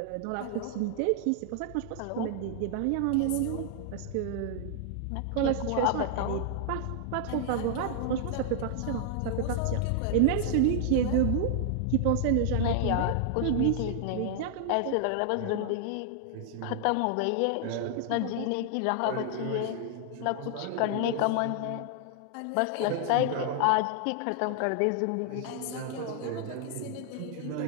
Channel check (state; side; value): different; both; correlation 0.00